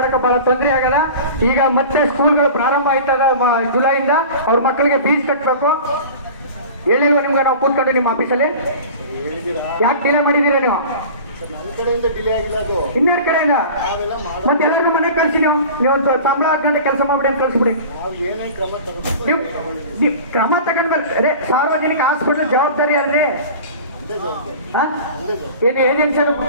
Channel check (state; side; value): inverted; both; correlation -0.38